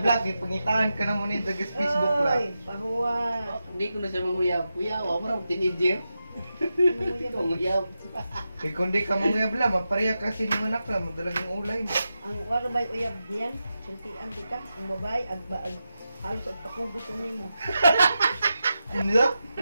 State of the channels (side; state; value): both; inverted; correlation -0.90